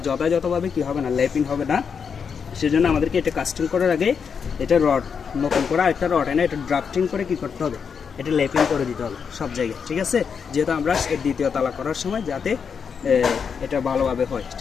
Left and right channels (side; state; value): right; quieter; 6.4 dB